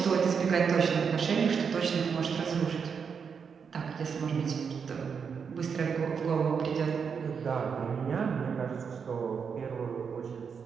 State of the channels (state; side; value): quieter; left; 6.3 dB